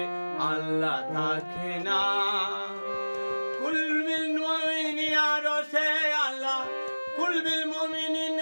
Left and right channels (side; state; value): both; inverted; correlation -1.00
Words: আল্লাহ থাকে না। কুলবিল মুমিনিন আরশে আল্লাহ, কুলবিল মুমিনিন